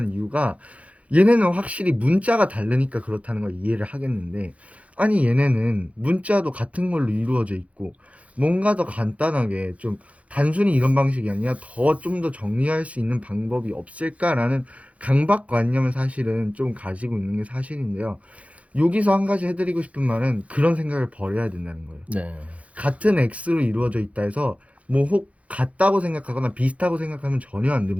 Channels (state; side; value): late; left; 0.065 ms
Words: 이유가, 얘네는 확실히 문자가 다르니까 그렇다는 걸 이해를 하겠는데, 아니 얘네는 문자도 같은 걸로 이루어져 있고 뭔가 더 간단하게 좀 단순히 이런 방식이 아니라 좀 더 정리할 수 있는 방법이 없을까라는 강박관념을 사실은 좀 가지고 있는 게 사실인데요. 여기서 한 가지 해드리고 싶은 말은 그런 생각을 버려야 된다는 거예요. 네. 같은 x로 이루어져 있다 해서 뭐 혹 같다고 생각하거나 비슷하고 생각하면 전혀 안